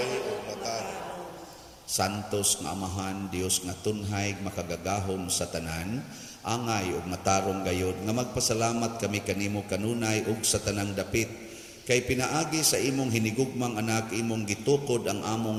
o matana. Santos nga Amahan, Dios nga tunhay makagagahom sa tanan, angay ug matarong gayod nga magpasalamat kami kanimo kanunay ug sa tanang dapit. Kay pinaagi sa imong hinigugmang anak, imong gitukod ang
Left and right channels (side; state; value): both; identical; correlation 1.00